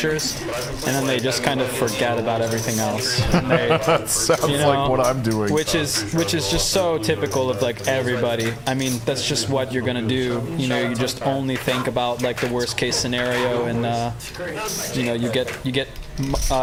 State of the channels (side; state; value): both; identical; correlation 1.00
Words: and then they just kind of forget about everything else. And they, That sounds you know, like what I'm doing. which is just so typical of like everybody. I mean, that's just what you're gonna do. You know, you just only think about like the worst case scenario, and you know, you get